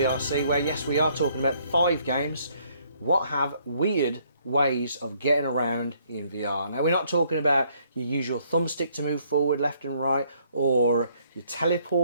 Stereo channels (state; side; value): inverted; both; correlation -0.67